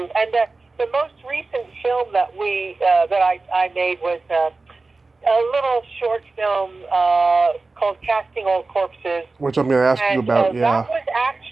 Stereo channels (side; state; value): left; quieter; 3.6 dB